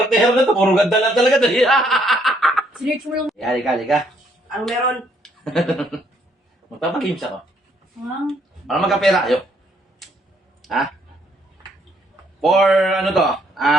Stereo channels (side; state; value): both; normal; correlation 0.69